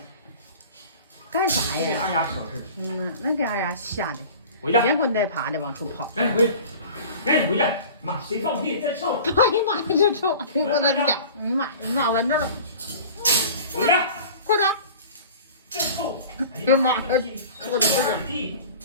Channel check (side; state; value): both; inverted; correlation -0.40